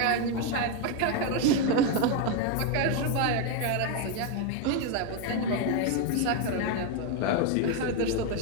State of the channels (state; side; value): different; both; correlation 0.02